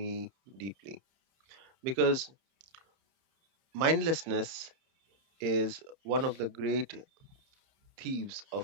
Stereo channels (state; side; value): late; left; 30 ms